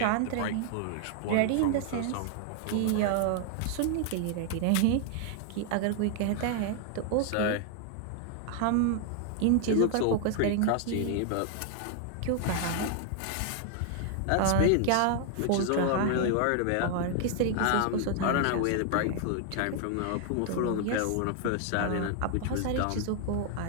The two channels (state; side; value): different; both; correlation 0.00